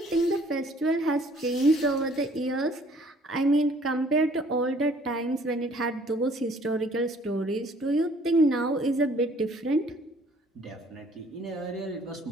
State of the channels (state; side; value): normal; both; correlation 0.58